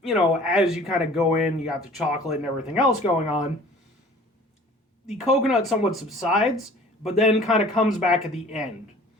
as you kind of go in, you got the chocolate and everything else going on. The coconut somewhat subsides, but then kind of comes back at the end.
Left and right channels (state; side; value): normal; both; correlation 0.48